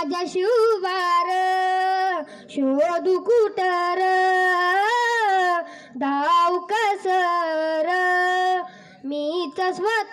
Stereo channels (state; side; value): identical; both; correlation 1.00